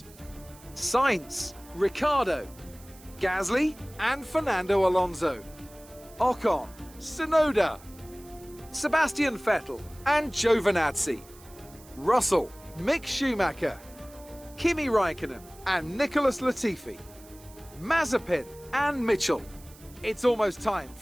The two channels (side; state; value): right; noise; hiss, 22 dB below the sound